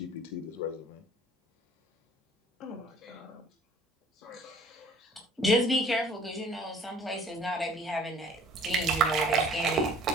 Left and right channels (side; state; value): both; normal; correlation 0.52